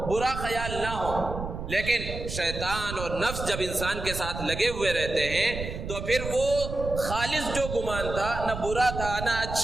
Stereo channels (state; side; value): noise; right; rumble, 7 dB below the sound